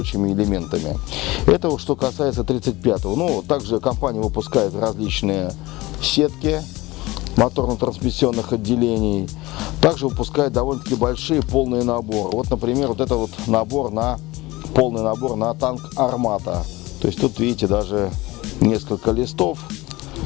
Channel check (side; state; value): right; quieter; 20.4 dB